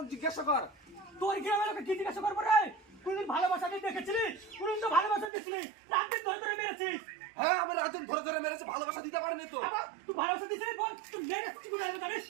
জিজ্ঞাসা কর। তোর গ্রামের লোকে কি জিজ্ঞাসা করবো রে? কোনদিন ভালোবাসা দিয়ে দেখেছিলি? কোনদিন তো ভালোবাসা দিছিলি, রাত দিন ধরে ধরে মেরেছিস। হ্যাঁ, আমি রাতুন ধরে ধরে মেরেছে, ভালোবাসা দিতে পারিনি তো। আবার তুই ভালোবাসা দিছিলি, বল তুই মেরেছিস, তুই জানিস জানিস?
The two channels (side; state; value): left; drops out; at 5.3 s